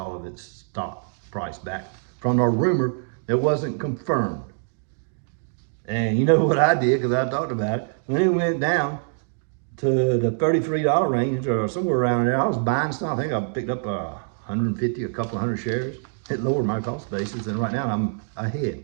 of its stock price back from a rumor that wasn't confirmed. And you know what I did, because I talked about it, when it went down to the $33 range or somewhere around there, I was buying stock. I think I picked up 150, a couple hundred shares. It lowered my cost basis, and right now I'm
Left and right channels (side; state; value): left; silent; digital silence